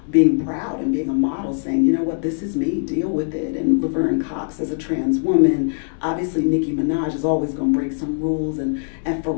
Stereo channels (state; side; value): silent; right; 65 dB below the other